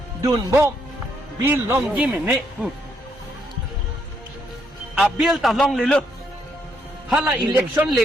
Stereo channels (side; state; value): both; normal; correlation 0.75